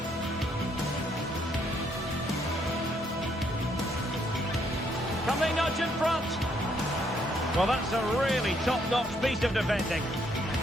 Can they nudge in front? Well, that's a really top-notch piece of defending.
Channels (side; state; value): both; normal; correlation 0.71